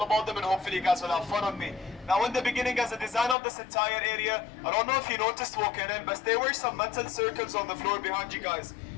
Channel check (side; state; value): right; drops out; at 3.4 s